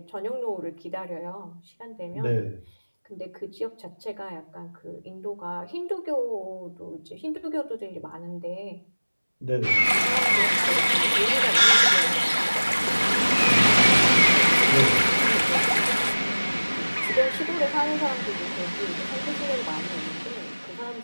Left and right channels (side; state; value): both; inverted; correlation -1.00